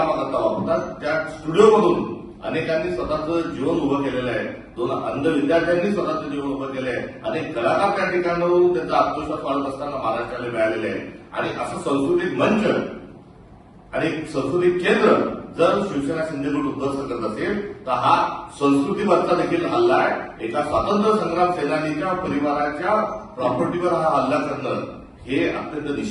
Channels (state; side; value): identical; both; correlation 1.00